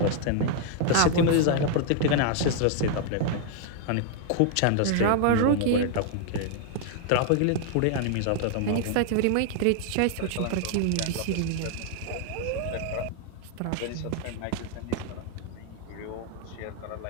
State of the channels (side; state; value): both; different; correlation 0.00